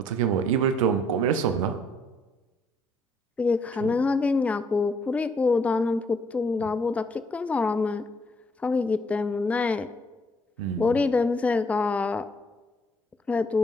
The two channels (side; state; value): both; normal; correlation 0.67